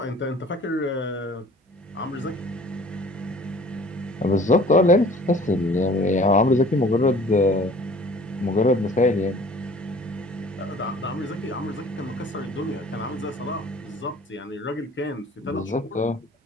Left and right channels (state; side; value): normal; both; correlation 0.49